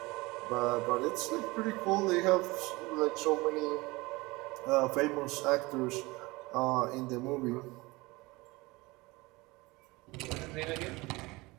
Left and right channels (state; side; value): quieter; left; 22.7 dB